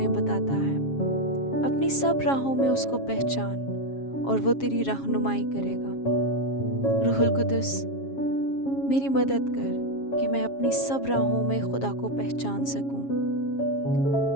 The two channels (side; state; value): right; late; 7.3 ms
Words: بتاتا ہے، اپنی سب راہوں میں اس کو پہچان اور وہ تیری رہنمائی کرے گا۔ روح القدس، میری مدد کر کہ میں اپنی سب راہوں میں خدا کو پہچان سکوں۔